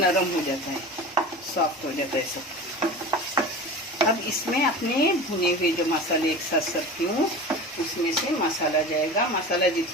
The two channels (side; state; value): both; normal; correlation 0.33